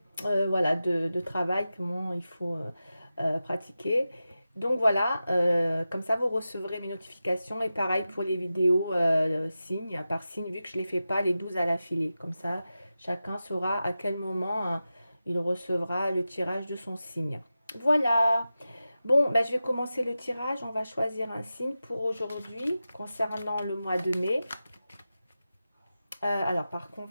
voilà, de travail, comment il faut pratiquer. Donc voilà, comme ça vous recevrez mes notifications et pareil pour les vidéos signe par signe vu que je ne les fais pas les 12 à l'affilée. Comme ça, chacun saura à quel moment il recevra le tirage de son signe. Voilà. Bon, ben, je vais commencer le tirage. On va choisir un signe pour aujourd'hui concernant le mois de mai. Alors par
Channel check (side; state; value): both; inverted; correlation -0.93